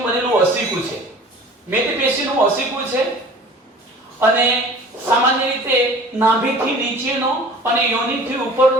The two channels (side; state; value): both; normal; correlation 0.44